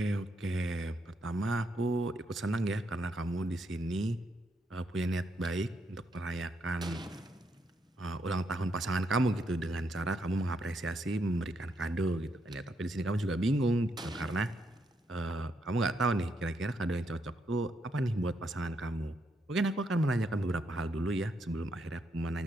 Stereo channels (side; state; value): both; normal; correlation 0.77